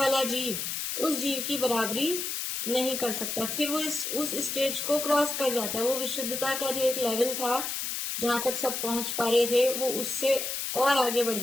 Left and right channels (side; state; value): left; noise; hiss, 3 dB below the sound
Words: जीव उस जीव की बराबरी नहीं कर सकता, फिर वो उस स्टेज को क्रॉस कर जाता है। वो विशुद्धता का जो एक लेवल था जहां तक सब पहुंच पा रहे थे, वो उससे और आगे बढ़